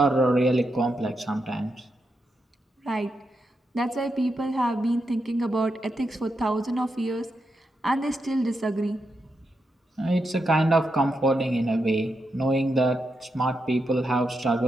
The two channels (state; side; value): normal; both; correlation 0.85